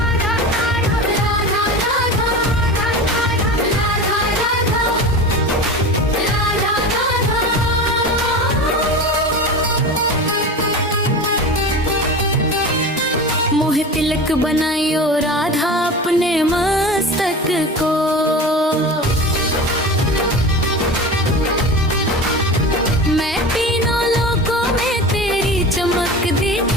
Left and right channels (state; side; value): normal; both; correlation 0.31